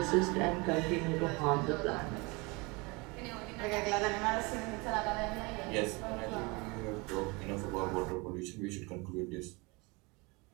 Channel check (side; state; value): left; quieter; 26.9 dB